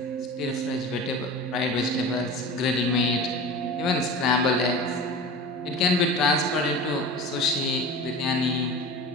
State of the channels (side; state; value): both; normal; correlation 0.34